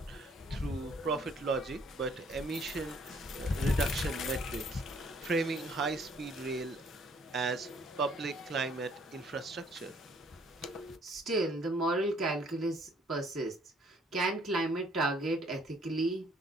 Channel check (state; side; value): normal; both; correlation 0.62